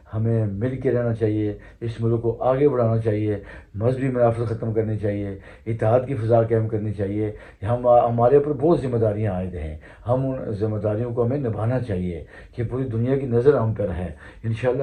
ہمیں مل کے رہنا چاہیے، اس ملک کو آگے بڑھانا چاہیے، مذہبی منافرت ختم کرنی چاہیے، اتحاد کی فضا قائم کرنی چاہیے۔ ہمارے اوپر بہت ذمہ داریاں عائد ہیں، ہم ان ذمہ داریوں کو ہمیں نبھانا چاہیے کہ پوری دنیا کی نظر ہم پر ہے۔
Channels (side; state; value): both; identical; correlation 1.00